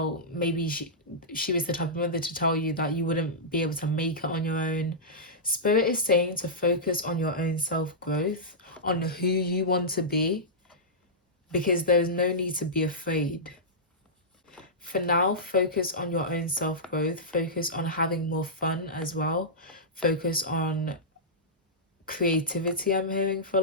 maybe she was the type of mother to tell you that you wouldn't be able to make it on your own. Spirit is saying to focus on your own self-growth, on who you want to be, because there's no need to be afraid. For now, focus on your own self-growth, focus on having more fun as well, focus on creativity. I'm hearing for a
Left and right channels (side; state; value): both; normal; correlation -0.14